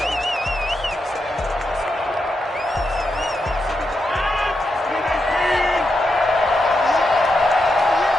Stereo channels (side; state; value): both; normal; correlation 0.85